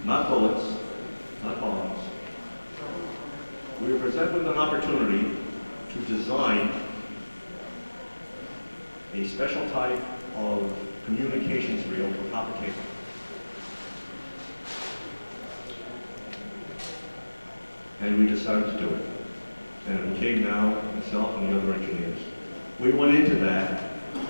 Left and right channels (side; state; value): both; inverted; correlation -1.00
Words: Not bullets, not bombs. We were presented with an opportunity to design a special type of communications reel for copper cable. And we decided to do it. And it became now myself and the other engineers. We went into that,